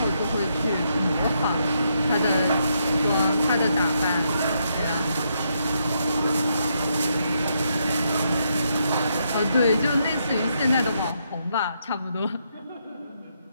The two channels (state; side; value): inverted; both; correlation -0.78